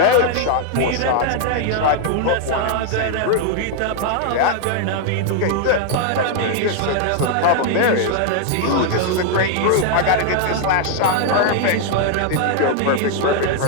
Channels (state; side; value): different; both; correlation 0.00